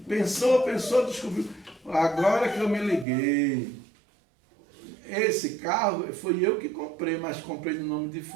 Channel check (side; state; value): left; drops out; at 3.1 s